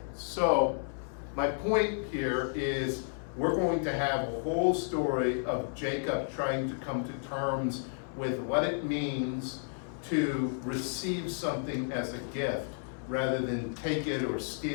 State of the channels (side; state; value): right; silent; 56 dB below the other